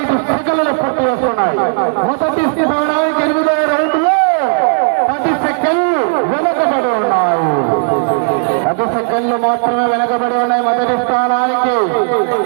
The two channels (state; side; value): silent; left; digital silence